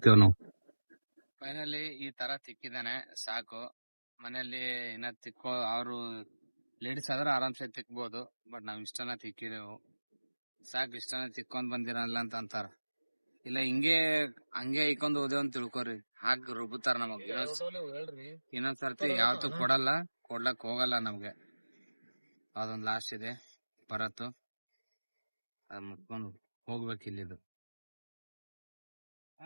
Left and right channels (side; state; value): both; inverted; correlation -1.00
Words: ನಾವು. ಫೈನಲಿ ಈ ತರ ತಿಕ್ಕಿದಾನೆ ಸಾಕು. ಮನೆಯಲ್ಲಿ ಇನ್ನ ತಿಕ್ಕೋ ಅವರು ಲೇಡೀಸ್ ಆದ್ರೆ ಆರಾಮ್ಸೆ ತಿಕ್ಬೋದು. ಬಟ್ ನಾವ್ ಇಷ್ಟನ ತಿಕ್ಕಿದೆವು ಸಾಕು. ಇಷ್ಟನ ತಿಕ್ಕೊಂಡ್ ಬಂದಿರಲ್ಲ ಅಂತ ಅಂತಾರ. ಇಲ್ಲ ಹಂಗೆ ಐಕೊಂಡ್ ಹೋದೇವ್ ಅಂತ ತಿಳ್ಕೊರಿ, ಹಾಕ್ ರುಬ್ಬುತ್ತಾರ ನಮಗ್. ಇನ್ನೊಂದ್ ಸರ್ತಿ ಯಾವತ್ತೂ ಕೊಡ್ಲಕ್ ಹೋಗಲ್ಲ ನಮ್ಗೆ. ಅದೊಂದ್ ಲಾಸ್ಟ್ ಇದೆ ಬರತ್ತು, ಅದ್ ಮುಟ್ಕೊಂಡು ಹೋಗ್ಬೇಕು ಇಲ್ಲಿದು.